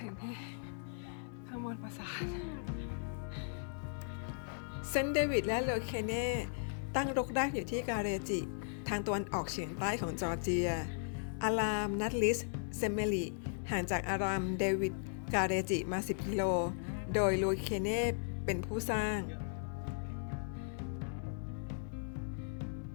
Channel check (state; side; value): silent; right; digital silence